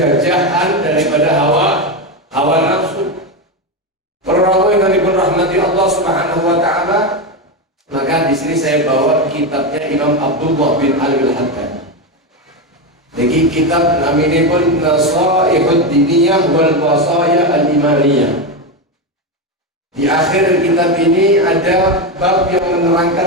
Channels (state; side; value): normal; both; correlation 0.12